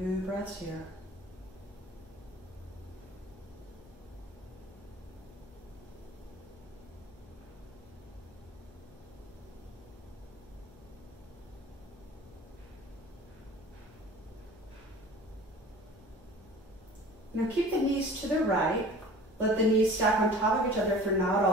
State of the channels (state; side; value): noise; left; hum, 23 dB below the sound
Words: breaths here. Now keep the knees to the right. Let the knees stack on top of each other if they're not